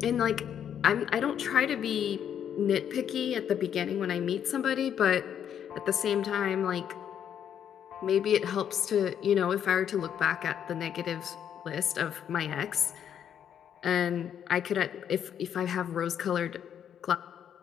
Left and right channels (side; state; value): right; quieter; 9.1 dB